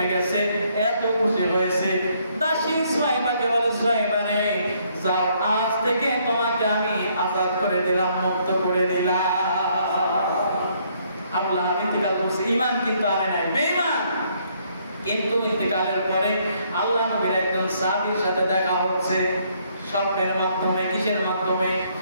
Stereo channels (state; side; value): inverted; both; correlation -0.68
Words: গেছে, এত খুশি হয়েছে। দাসী সুয়াইবাকে বলে, সুয়াইবা রে, যাও, আজ থেকে তোমাকে আমি আজাদ করে দিলাম, মুক্ত করে দিলাম। আবু লাহাব ইন্তেকাল করছে, ঈমান কিন্তু আনে নাই, বেঈমান। কিন্তু ইন্তেকালের পরে আল্লাহ নবীর একজন সাহাবীর সাথে দেখা হচ্ছে স্বপ্নের মাধ্যমে। কিসের মাধ্যমে?